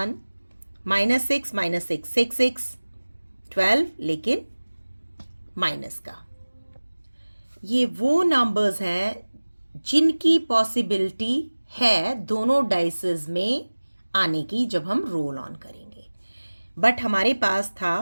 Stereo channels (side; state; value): both; inverted; correlation -1.00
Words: -6 6 6 12, लेकिन माइनस का। ये वो नंबर्स हैं जिनकी पॉसिबिलिटी है दोनों डाइसेस में आने की जब हम रोल ऑन करेंगे। बट हमारे पास